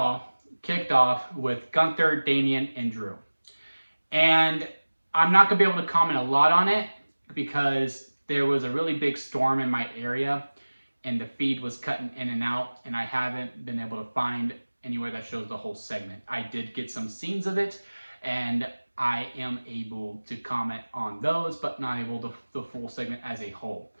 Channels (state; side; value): inverted; both; correlation -1.00